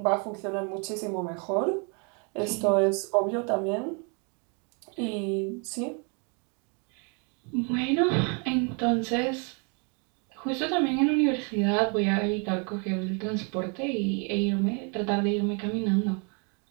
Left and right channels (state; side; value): quieter; left; 36.0 dB